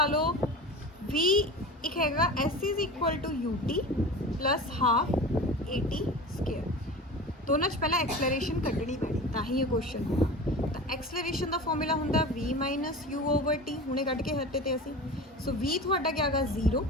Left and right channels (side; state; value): both; normal; correlation 0.33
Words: लो v एक हैगा s is equal to ut plus half at²। दोनों पहला एक्सलरेशन कढ़नी पैनी ताही ये क्वेश्चन होगा। तो एक्सलरेशन का फॉर्मूला होंगे v minus u over T, हुणे कढ़ के हटे थे असी। सो v थोड़ा क्या है 0